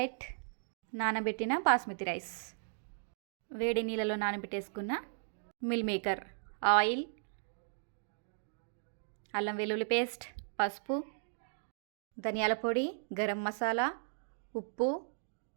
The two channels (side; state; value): left; silent; digital silence